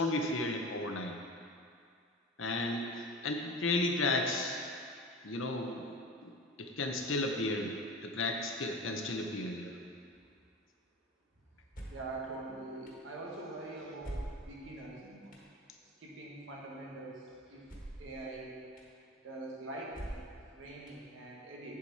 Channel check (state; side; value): normal; both; correlation 0.32